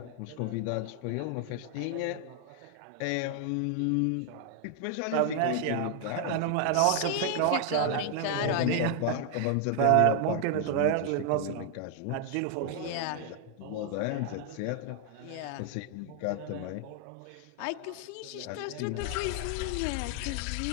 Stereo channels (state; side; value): different; both; correlation 0.00